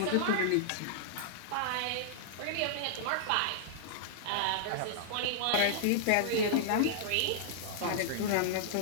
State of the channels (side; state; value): both; different; correlation -0.01